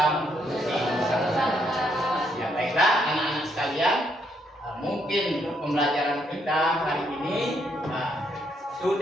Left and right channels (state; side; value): normal; both; correlation 0.74